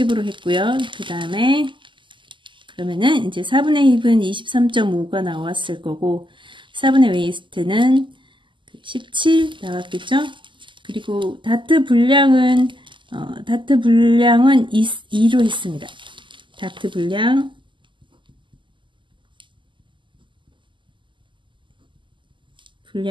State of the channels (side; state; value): left; late; 0.24 ms